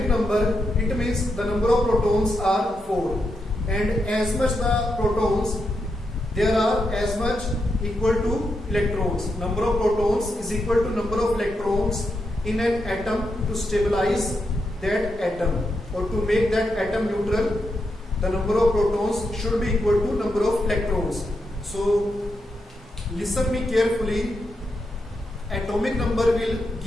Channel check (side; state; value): both; normal; correlation 0.84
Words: number. It means the number of protons are 4. And as much the protons, there are as much equal to electrons. Number of protons is equal to number of electrons in an atom. To stabilize that atom or to make that atom neutral, the number of protons should be equal to number of electrons. So listen me carefully. Atomic number will